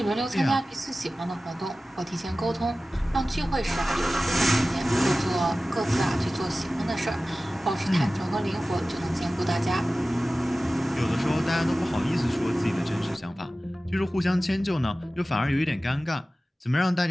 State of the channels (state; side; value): normal; both; correlation 0.96